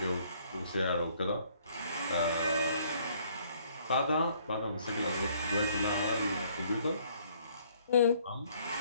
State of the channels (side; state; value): both; inverted; correlation -0.63